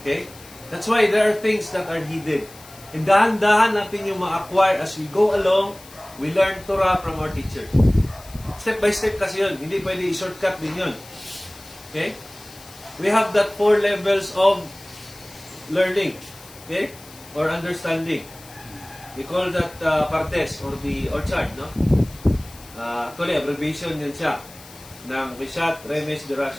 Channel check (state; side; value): noise; left; hiss, 20 dB below the sound